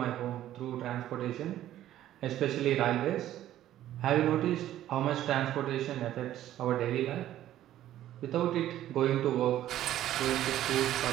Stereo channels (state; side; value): quieter; left; 12.8 dB